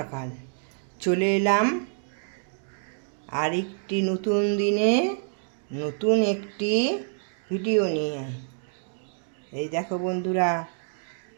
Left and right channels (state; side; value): silent; left; digital silence